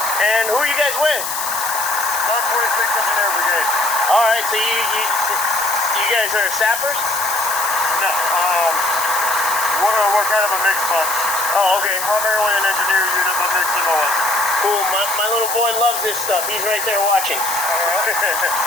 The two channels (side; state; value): left; noise; hiss, 4 dB below the sound